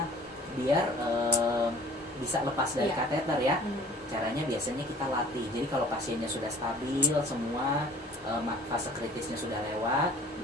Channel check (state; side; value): normal; both; correlation 0.49